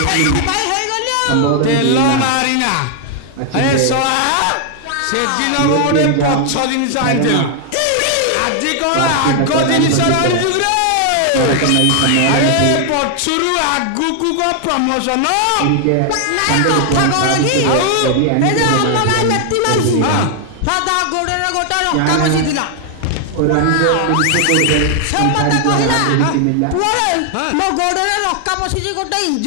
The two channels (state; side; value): different; both; correlation 0.00